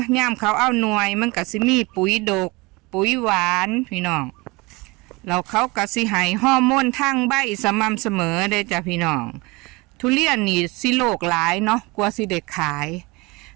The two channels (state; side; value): quieter; left; 24.6 dB